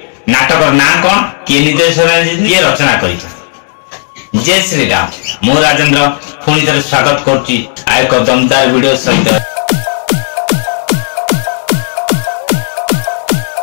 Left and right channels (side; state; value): right; silent; 60 dB below the other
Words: नाटक ना कौन किए निर्देशना किए रचना कर। जय श्री राम मु राजेंद्र पुणी थे स्वागत करुच्ची आ एक दमदार वीडियो सहित।